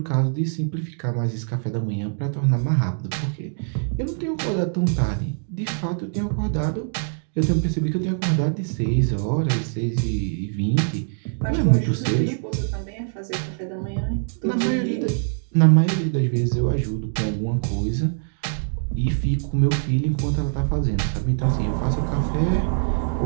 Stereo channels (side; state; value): left; silent; digital silence